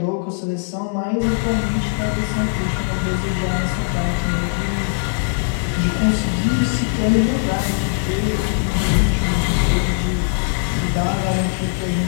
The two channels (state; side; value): silent; right; digital silence